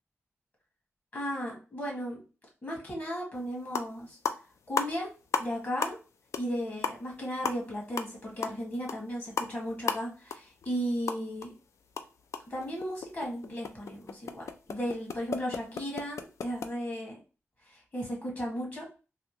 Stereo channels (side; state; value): both; normal; correlation 0.71